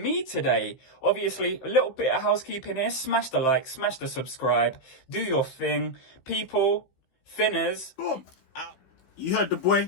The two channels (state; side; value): late; right; 15 ms